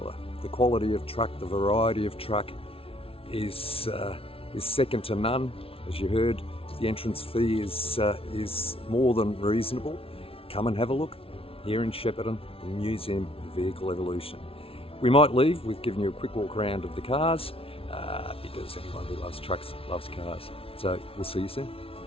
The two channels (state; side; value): late; right; 0.26 ms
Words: The quality of truck, the variety of truck is second to none. As you heard, the entrance fee is more than reasonable. Come and have a look here in Shepparton, the Museum of Vehicle Evolution. We might leave with giving you a quick walk around of the cars, because anyone who loves trucks loves cars. So we'll see you soon.